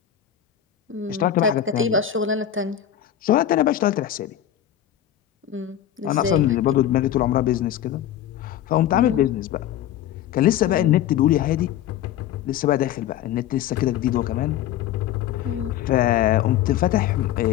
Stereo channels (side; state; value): right; quieter; 11.0 dB